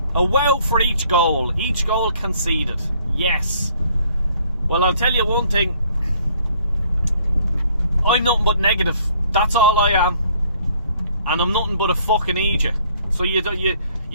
A wow for each goal. Each goal conceded. Yes. Well, I'll tell you one thing. I'm nothing but negative. That's all I am. And I'm nothing but a fucking idiot. So you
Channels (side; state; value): both; inverted; correlation -0.62